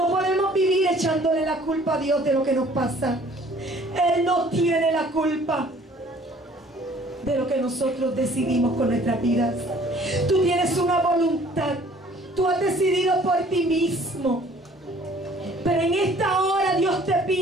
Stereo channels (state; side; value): normal; both; correlation 0.55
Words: podemos vivir echándole la culpa a Dios de lo que nos pasa. Él no tiene la culpa de lo que nosotros decidimos con nuestras vidas. Tú tienes una voluntad, tú has decidido por ti mismo, pero en esta hora Dios te